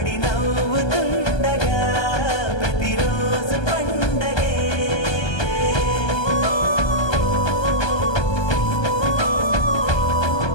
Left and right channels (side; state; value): right; late; 1.2 ms